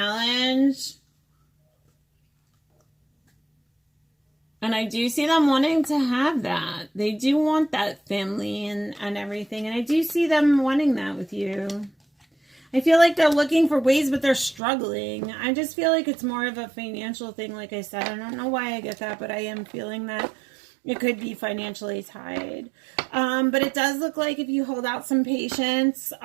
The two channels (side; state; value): left; drops out; at 14.6 s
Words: And I do see them wanting to have that. They do want that family and everything. And I do see them wanting that with you. I feel like they're looking for ways, but they're struggling. I just feel like it's more of a financial thing, like I said. I don't know why I get that, but I am feeling that it could be financially tied. But it does look like if you hold out some patience,